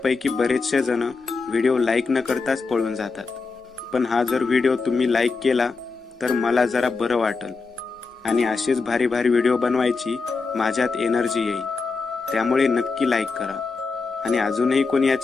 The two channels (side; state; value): right; quieter; 4.4 dB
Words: बरेचसे जण व्हिडिओ लाईक न करताच पळून जातात, पण हा जर व्हिडिओ तुम्ही लाईक केला तर मला जरा बरं वाटेल आणि असेच भारी भारी व्हिडिओ बनवायची माझ्यात एनर्जी येईल. त्यामुळे नक्की लाईक करा आणि अजूनही कोणी या